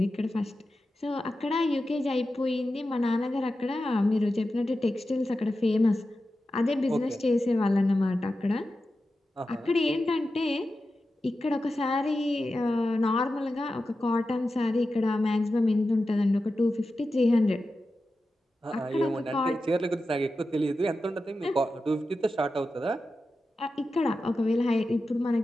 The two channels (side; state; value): both; normal; correlation 0.92